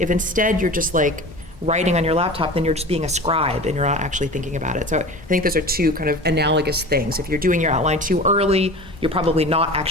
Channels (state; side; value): normal; both; correlation 0.35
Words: instead you're just like writing on your laptop, then you're just being a scribe and you're not actually thinking about it. So I think those are two kind of analogous things. If you're doing your outline too early, you're probably not